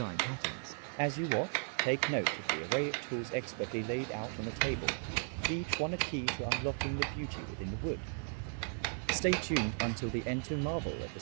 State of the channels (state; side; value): silent; left; 54 dB below the other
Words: patterns. As you watch, take note of the array of tools expertly laid out on the table, each one a key to unlocking the beauty within the wood. Stay tuned until the end to marvel at the